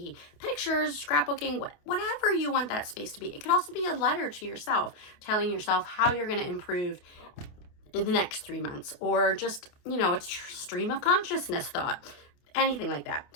pictures, scrapbooking, whatever you want that space to be. It could also be a letter to yourself, telling yourself how you're going to improve in the next 3 months, or just, you know, it's stream of consciousness thought, anything like that.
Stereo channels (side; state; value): right; late; 28 ms